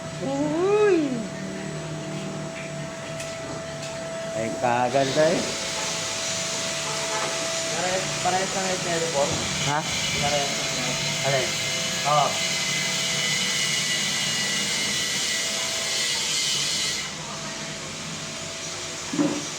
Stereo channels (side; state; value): both; identical; correlation 1.00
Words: Uy! Ay kaganda eh. Parehas na ngayon teleport. Ha? Parehas na ngayon. Alin? Oo.